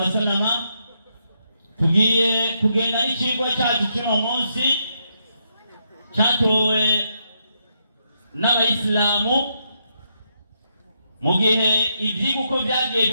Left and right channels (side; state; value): both; inverted; correlation -0.79